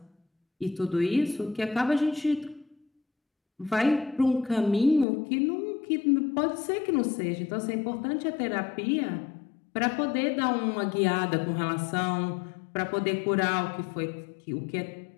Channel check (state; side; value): drops out; right; at 5.1 s